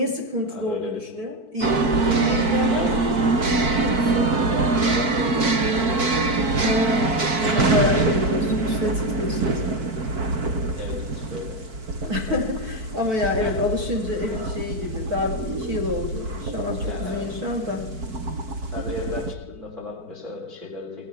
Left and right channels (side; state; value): left; late; 4.5 ms